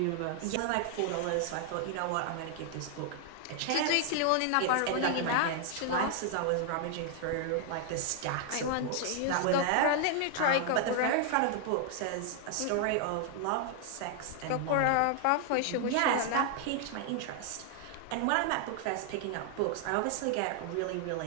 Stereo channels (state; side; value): different; both; correlation 0.00